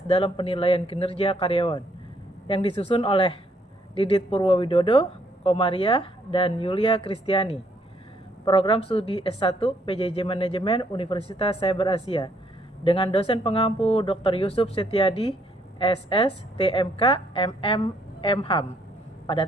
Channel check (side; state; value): both; normal; correlation 0.69